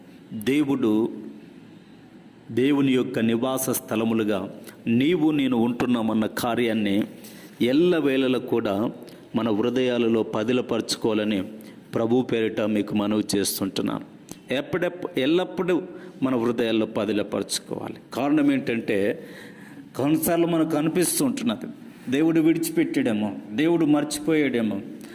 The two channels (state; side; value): identical; both; correlation 1.00